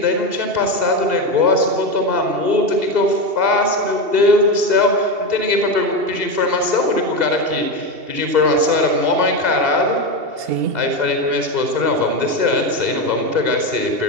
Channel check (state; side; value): late; left; 2.7 ms